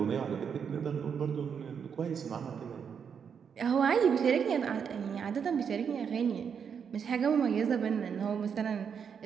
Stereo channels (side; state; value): left; quieter; 7.0 dB